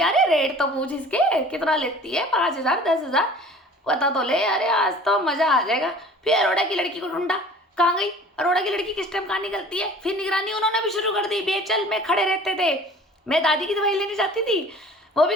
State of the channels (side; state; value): both; normal; correlation 0.46